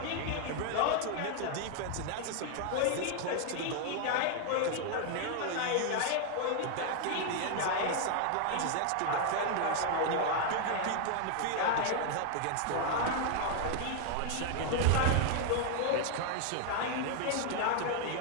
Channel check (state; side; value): different; both; correlation 0.00